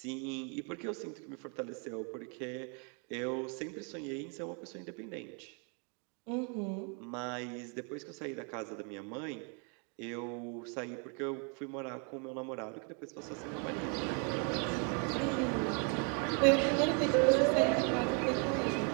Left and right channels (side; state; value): left; quieter; 37.7 dB